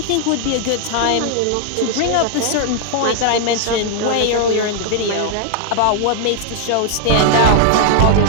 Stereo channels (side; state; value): both; different; correlation 0.00